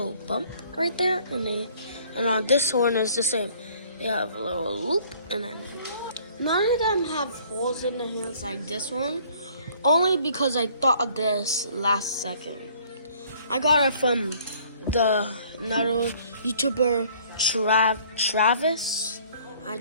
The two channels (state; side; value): inverted; both; correlation -0.57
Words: bump right there, and on this horn is the same. They have a little loop, and then none of them have holes in the hands like this one. Only because I thought of this last second. I got it from another YouTuber, Travis. I